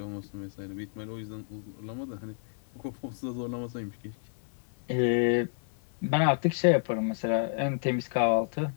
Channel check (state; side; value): silent; right; 57 dB below the other